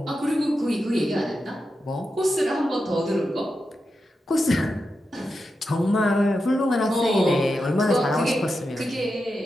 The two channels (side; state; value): both; normal; correlation 0.89